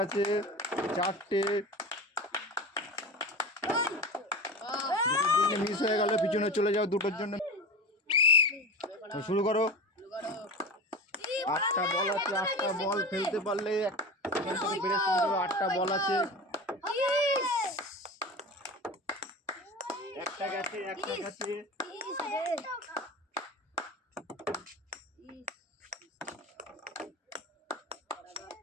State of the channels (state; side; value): normal; both; correlation 0.29